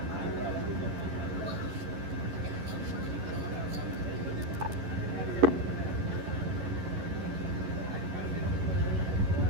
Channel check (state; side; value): late; left; 11 ms